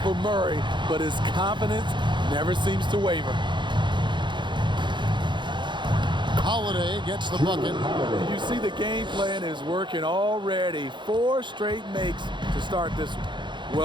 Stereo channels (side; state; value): left; late; 0.23 ms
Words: for Murray, but his confidence never seems to waver. Holiday gets the bucket. You see the game plan is working already. 4 straight makes to start this one.